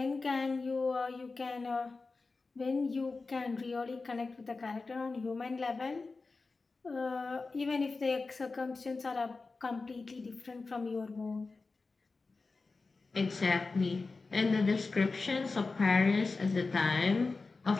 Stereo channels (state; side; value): quieter; right; 3.9 dB